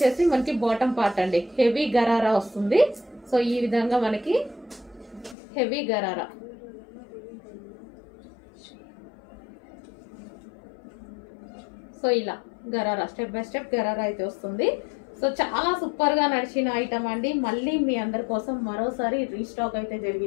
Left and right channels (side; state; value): right; drops out; at 5.4 s